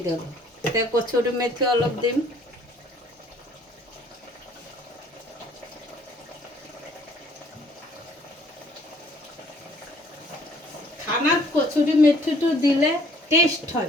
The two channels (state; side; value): normal; both; correlation 0.60